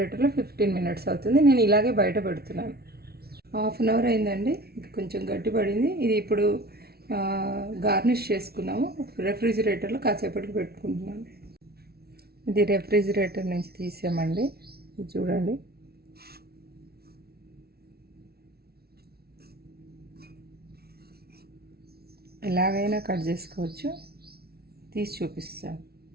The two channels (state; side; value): late; left; 0.45 ms